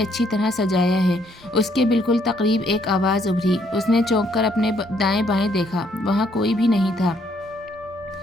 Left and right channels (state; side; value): normal; both; correlation 0.69